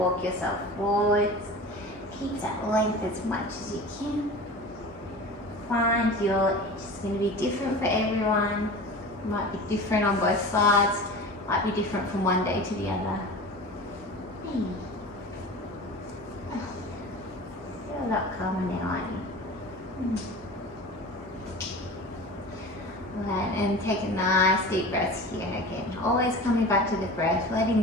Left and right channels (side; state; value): both; normal; correlation 0.35